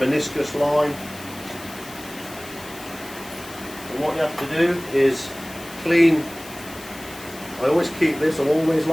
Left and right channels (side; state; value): left; noise; hiss, 17 dB below the sound